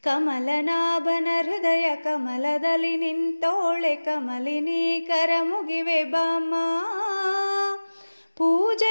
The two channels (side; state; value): both; inverted; correlation -1.00